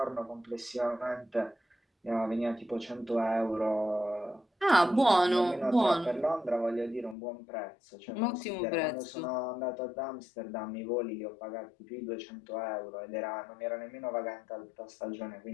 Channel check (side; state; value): right; drops out; at 7.2 s